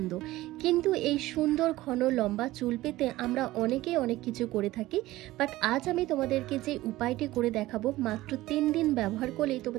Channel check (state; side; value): quieter; left; 17.2 dB